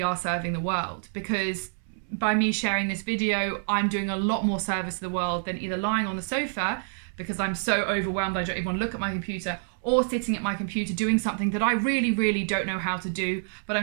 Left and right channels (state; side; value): silent; left; 60 dB below the other